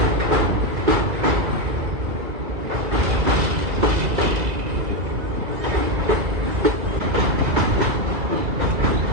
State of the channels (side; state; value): left; late; 2.3 ms